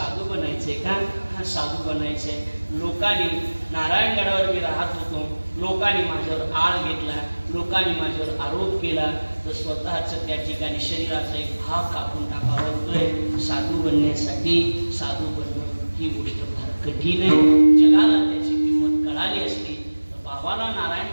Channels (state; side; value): inverted; both; correlation -1.00